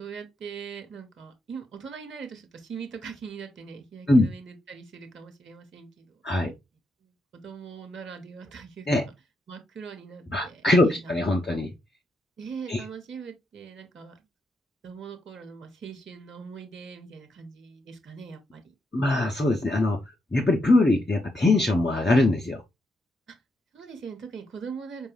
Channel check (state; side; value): normal; both; correlation 0.81